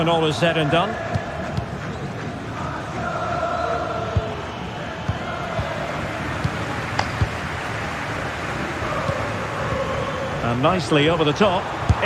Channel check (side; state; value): both; identical; correlation 1.00